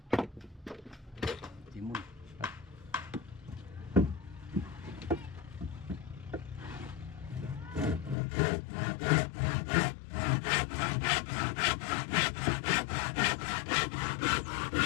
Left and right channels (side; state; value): right; drops out; at 8.2 s